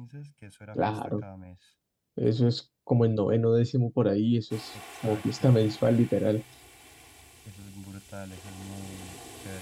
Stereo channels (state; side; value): identical; both; correlation 1.00